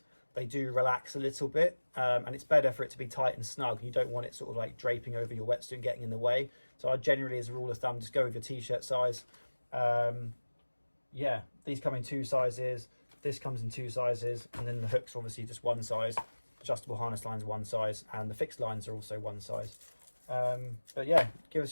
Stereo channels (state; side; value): inverted; both; correlation -1.00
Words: they do relax a little bit, and it's better for it to be tight and snug. You don't want it sort of like draping over your wetsuit and getting in the way. So I generally, as a rule of thumb, just go with your t-shirt size. Yeah, these come in 2 sizes, this comes in 2 sizes, and then the hooks are obviously just 1 size, adjustable harness lines 1 size, and the fixed lines are also 1 size. But yeah, give us